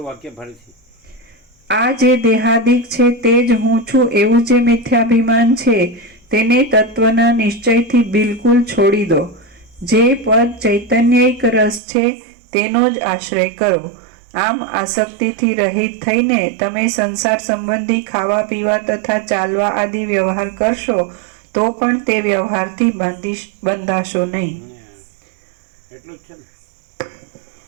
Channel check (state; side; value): drops out; left; at 11.8 s